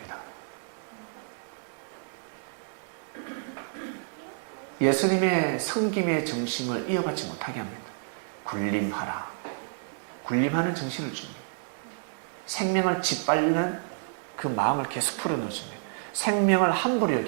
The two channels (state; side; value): silent; left; digital silence